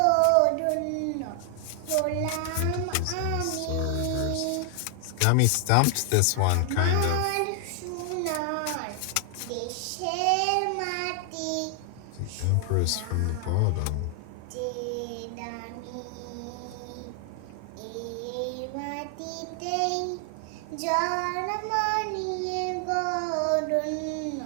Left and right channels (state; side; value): different; both; correlation 0.00